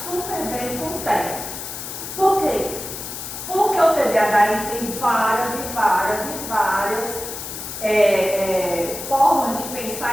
super bem com o TEA. Por quê? Porque o TDAH ele tem várias formas de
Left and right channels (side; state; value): left; noise; hiss, 8 dB below the sound